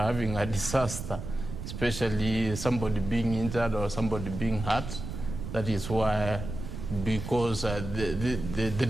a disaster, especially somebody being injured or somebody being hurt. That is why, because the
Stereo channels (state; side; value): noise; right; rumble, 7 dB below the sound